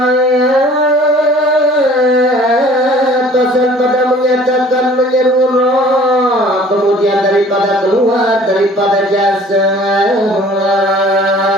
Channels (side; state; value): both; normal; correlation 0.51